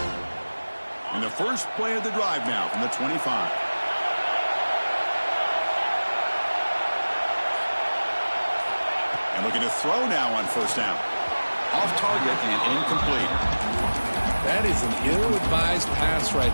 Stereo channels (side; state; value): both; inverted; correlation -1.00